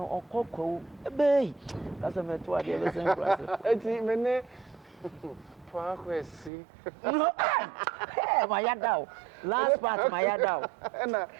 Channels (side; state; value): left; drops out; at 6.5 s